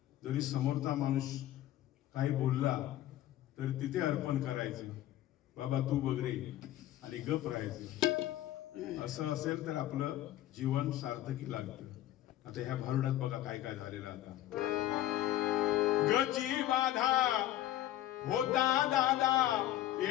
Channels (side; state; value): right; quieter; 13.6 dB